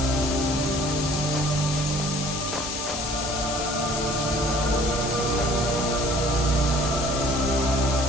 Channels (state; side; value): noise; left; hiss, 5 dB below the sound